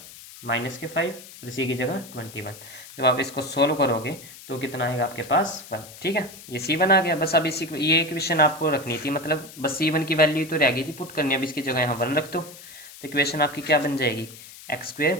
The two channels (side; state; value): left; noise; hiss, 17 dB below the sound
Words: -5 और सी की जगह 21। जब आप इसको सोल्व करोगे तो कितना आएगा आपके पास 1। ठीक है, ये C1 आ गया। बस अब इसी ये इक्वेशन आपको रखनी थी, मतलब बस C1 की वैल्यू तो रह गई थी पुट करनी। अब इसकी जगह यहाँ 1 रख दो तो इक्वेशन आपकी क्या बन जाएगी, x²